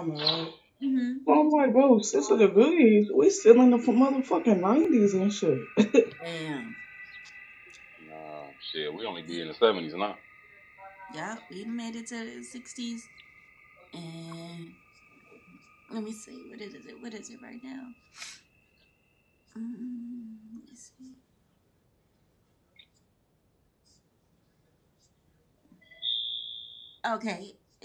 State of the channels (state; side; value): identical; both; correlation 1.00